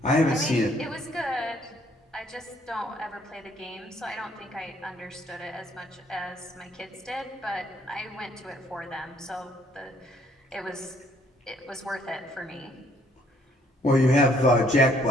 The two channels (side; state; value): both; normal; correlation 0.64